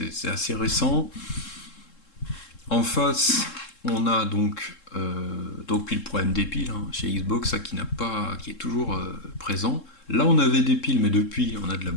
assez récent. En face, on a donc puis le problème des piles, hein, chez Xbox, ça qui est toujours présent. Là, on avait des piles, mais depuis, on a de la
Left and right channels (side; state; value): right; late; 3.7 ms